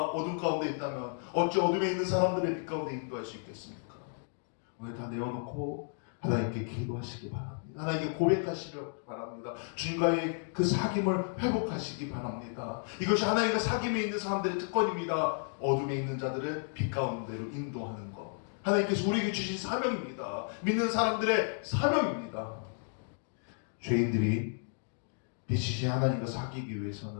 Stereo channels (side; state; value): right; silent; 56 dB below the other